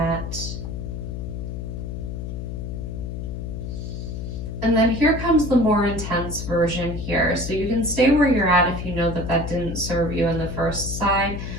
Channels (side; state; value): left; noise; hum, 6 dB below the sound